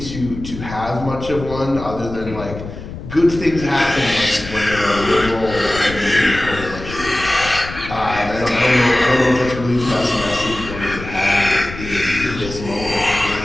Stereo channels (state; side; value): noise; left; rumble, 11 dB below the sound